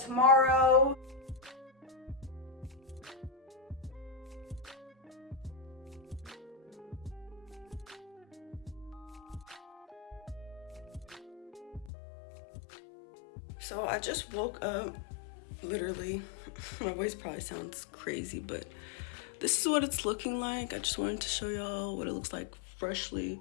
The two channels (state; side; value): drops out; right; at 11.9 s